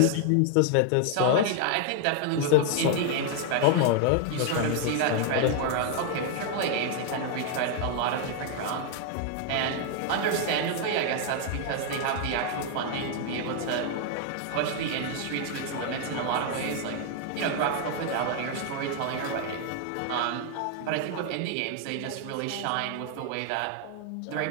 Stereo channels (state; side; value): different; both; correlation 0.00